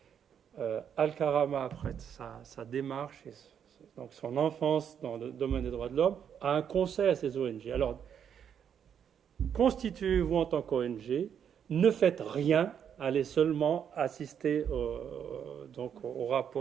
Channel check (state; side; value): quieter; left; 8.3 dB